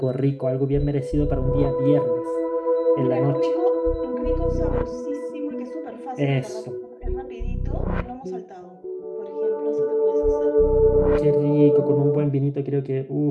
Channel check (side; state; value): both; identical; correlation 1.00